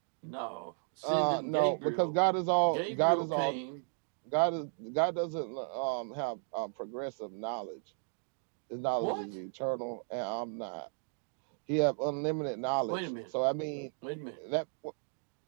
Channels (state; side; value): silent; left; 55 dB below the other